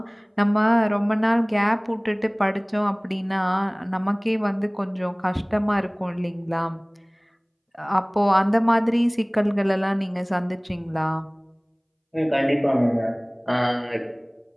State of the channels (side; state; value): both; identical; correlation 1.00